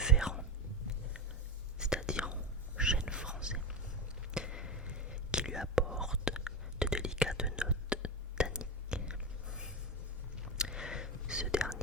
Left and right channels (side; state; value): both; normal; correlation 0.17